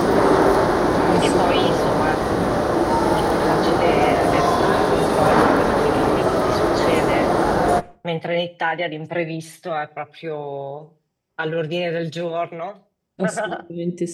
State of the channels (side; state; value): both; identical; correlation 1.00